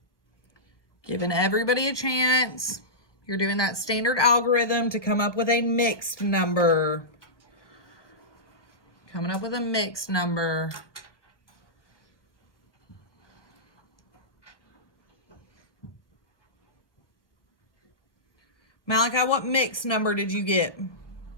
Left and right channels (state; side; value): late; right; 1.0 ms